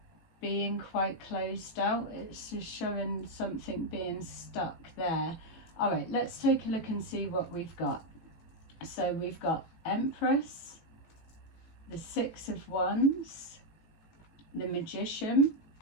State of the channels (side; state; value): right; late; 18 ms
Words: being quite closed out. It's just showing something being stuck there. All right, let's take a look and see what we've got. So we've got Empress, the Six of Wands, the Magician,